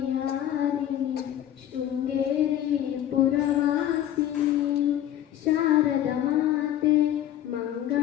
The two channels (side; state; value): right; quieter; 11.7 dB